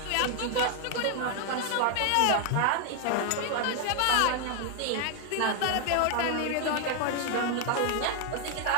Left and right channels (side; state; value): both; different; correlation 0.00